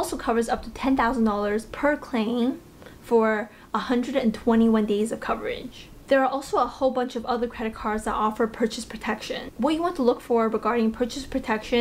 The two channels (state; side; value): identical; both; correlation 1.00